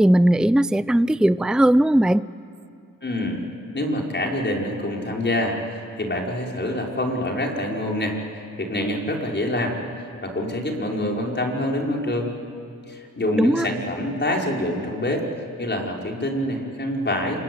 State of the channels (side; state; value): both; normal; correlation 0.68